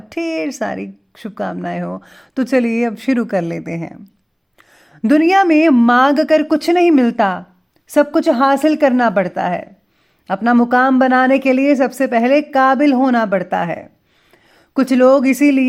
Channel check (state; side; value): identical; both; correlation 1.00